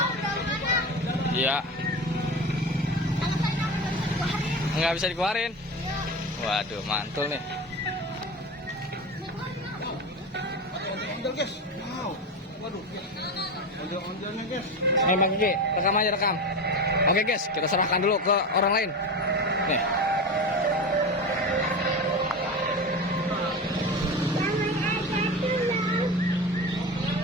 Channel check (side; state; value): both; normal; correlation 0.24